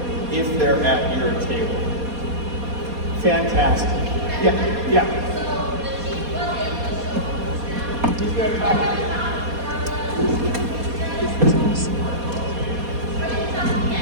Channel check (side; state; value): left; late; 4.2 ms